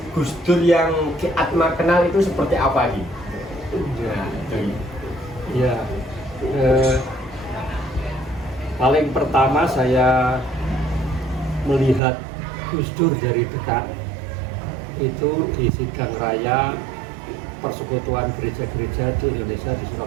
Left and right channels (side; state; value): left; drops out; at 12.0 s